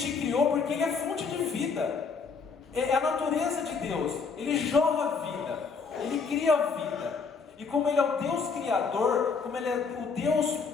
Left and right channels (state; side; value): quieter; right; 5.1 dB